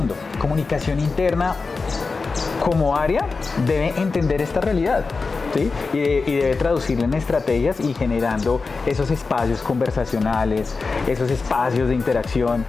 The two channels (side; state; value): right; quieter; 4.2 dB